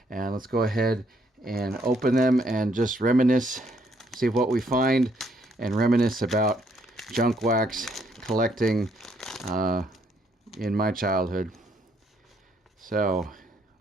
and let's go ahead and open them and just reminisce, see what we find, and reminisce about junk wax collecting in my childhood. So,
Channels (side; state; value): both; normal; correlation 0.70